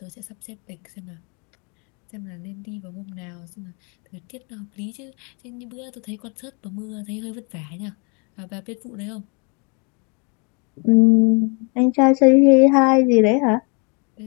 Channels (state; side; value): quieter; right; 34.3 dB